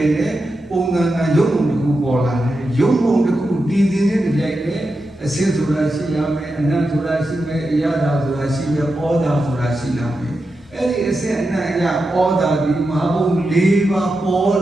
Unga Yomu Bola, Yomu the Ku did in the Jane, a sense of Rasilame, and not to Rasime, Yada to Rasime, Oda to Rasilame. Any essay and Oda, the Mabu liva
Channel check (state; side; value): normal; both; correlation 0.89